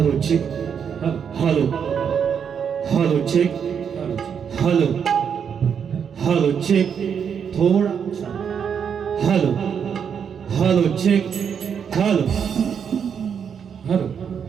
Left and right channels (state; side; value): quieter; left; 7.4 dB